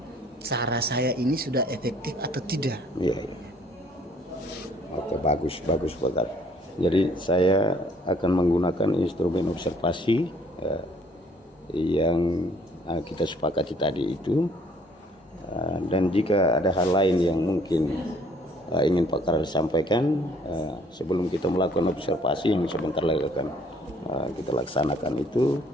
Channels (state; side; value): normal; both; correlation 0.61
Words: cara saya ini sudah efektif atau tidak. Iya. Oke, bagus Pak Kar. Jadi saya akan menggunakan instrumen observasi yang kita sepakati tadi itu, dan jika ada hal lain yang mungkin ingin Pak Karel sampaikan sebelum kita melakukan observasi yang sebentar lagi akan kita laksanakan itu,